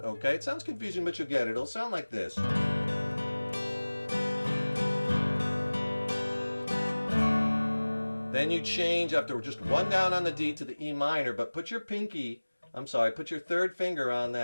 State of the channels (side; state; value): both; inverted; correlation -1.00